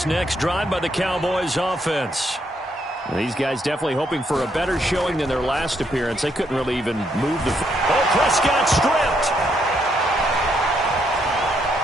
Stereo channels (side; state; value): both; normal; correlation 0.75